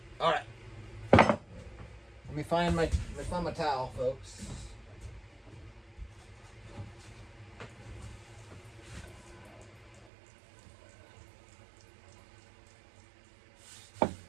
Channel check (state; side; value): drops out; left; at 10.1 s